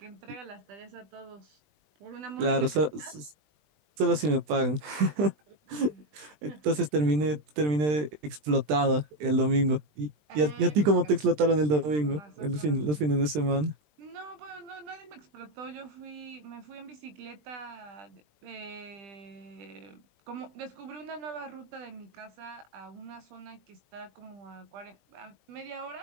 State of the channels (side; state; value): left; late; 20 ms